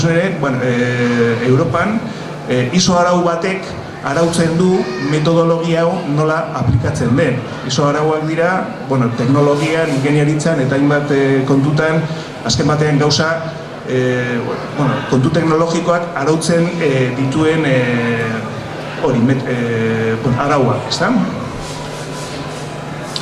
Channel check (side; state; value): both; identical; correlation 1.00